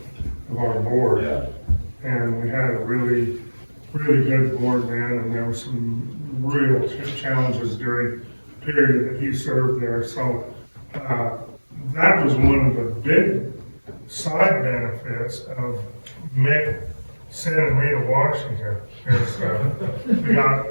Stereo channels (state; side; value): inverted; both; correlation -1.00